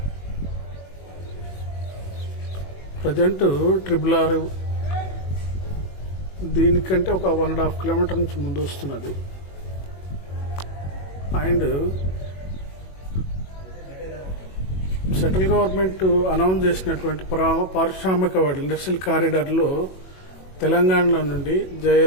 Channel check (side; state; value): right; late; 21 ms